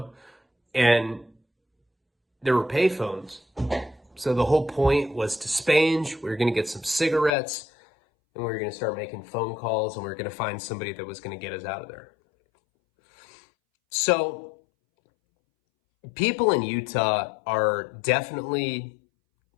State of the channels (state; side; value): drops out; right; at 7.3 s